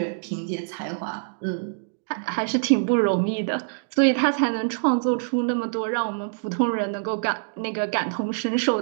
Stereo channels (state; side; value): silent; left; digital silence